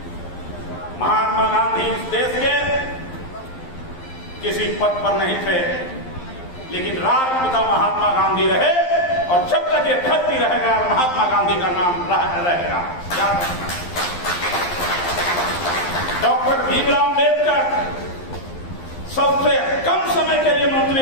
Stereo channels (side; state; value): right; late; 11 ms